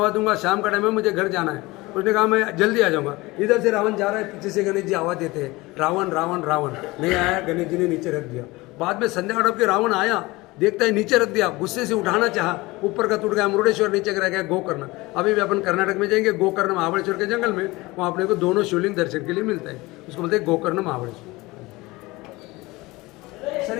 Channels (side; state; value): right; quieter; 21.6 dB